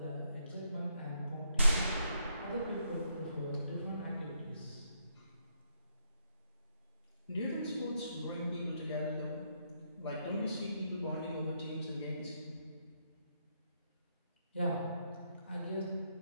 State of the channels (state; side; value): inverted; both; correlation -0.77